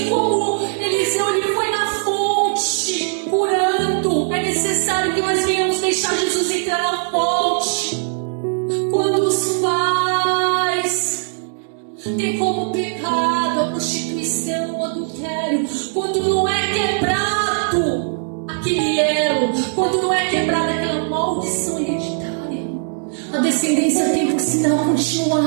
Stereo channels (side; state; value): left; silent; 66 dB below the other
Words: como Eliseu, ele foi na fonte curando, é necessário que nós venhamos deixar Jesus entrar na fonte. Quando os pais têm como pecado a prostituição, o adultério, quando não é quebrado aquele elo, quando não é quebrada aquela maldição hereditária, a descendência tem por sinal